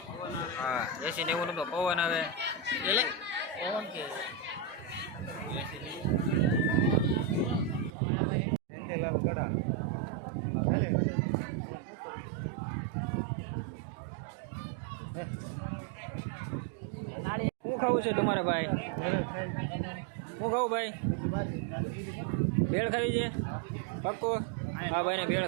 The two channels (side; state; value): left; drops out; at 7.9 s